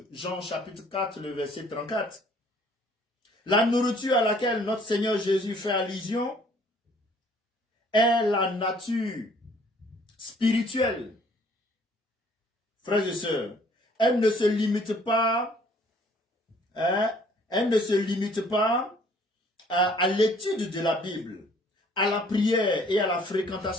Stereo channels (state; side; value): normal; both; correlation 0.59